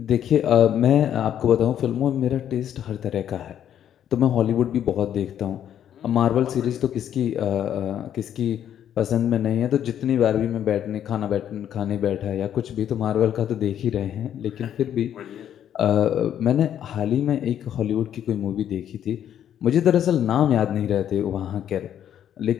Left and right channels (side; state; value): right; quieter; 10.1 dB